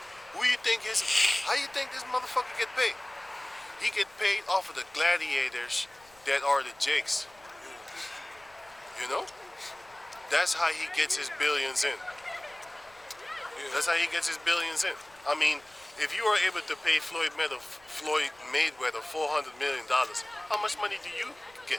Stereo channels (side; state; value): left; noise; rumble, 29 dB below the sound